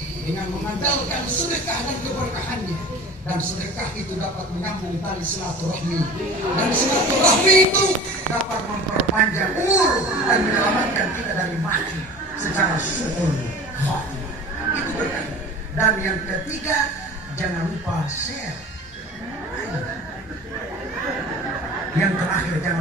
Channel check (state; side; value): normal; both; correlation 0.39